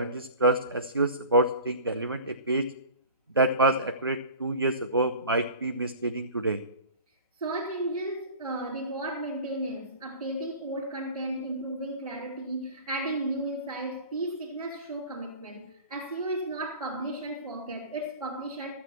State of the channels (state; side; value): inverted; both; correlation -0.39